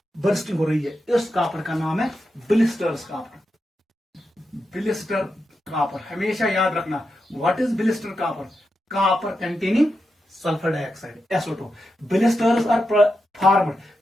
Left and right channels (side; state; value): both; normal; correlation 0.87